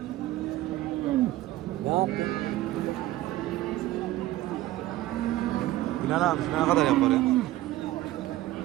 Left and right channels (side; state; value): left; quieter; 15.8 dB